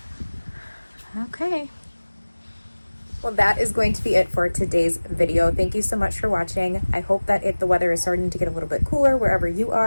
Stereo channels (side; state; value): both; inverted; correlation -1.00